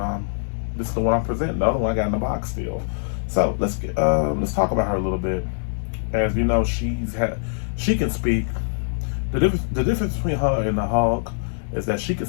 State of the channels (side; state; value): right; silent; digital silence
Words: this is the one I'm presenting. The other one I got in the box still. So let's talk about her a little bit. As you know, she can speak. The difference between her and the Hulk is that she can